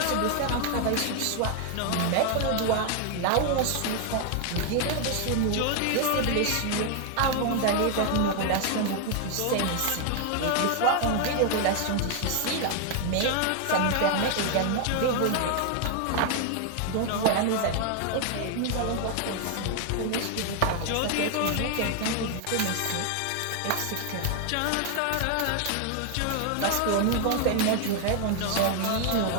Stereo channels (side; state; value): both; different; correlation 0.00